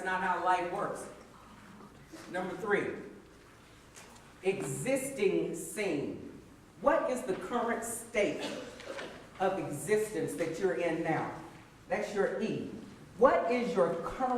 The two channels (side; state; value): both; identical; correlation 1.00